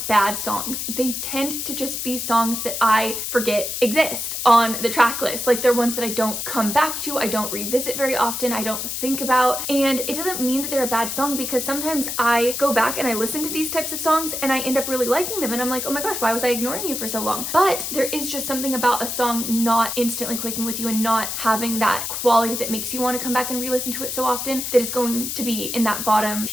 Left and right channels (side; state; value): left; noise; hiss, 4 dB below the sound